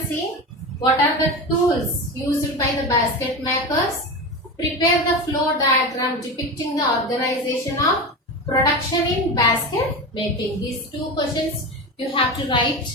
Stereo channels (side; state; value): both; normal; correlation 0.24